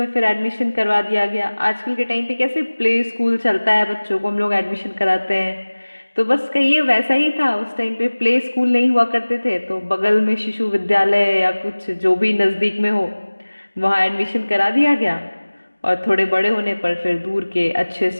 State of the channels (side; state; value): both; inverted; correlation -1.00